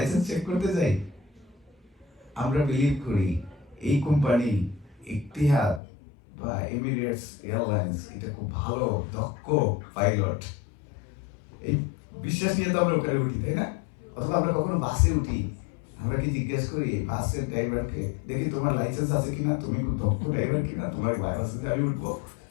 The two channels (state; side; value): drops out; right; at 5.8 s